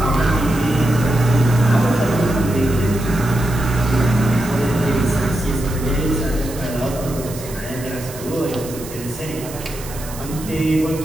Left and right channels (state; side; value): noise; right; hiss, 14 dB below the sound